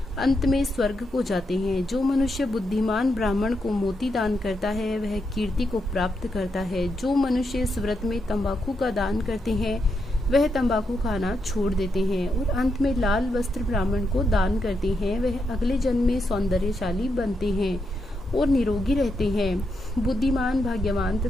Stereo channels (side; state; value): both; normal; correlation 0.82